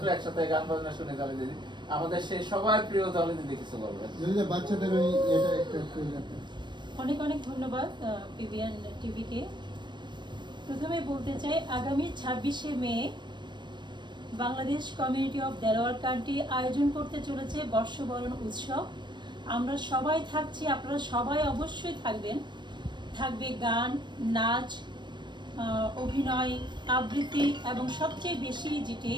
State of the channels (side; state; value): left; late; 0.22 ms